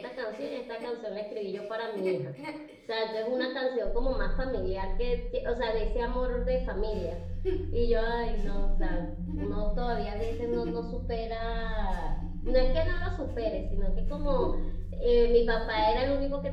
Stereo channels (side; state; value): both; identical; correlation 1.00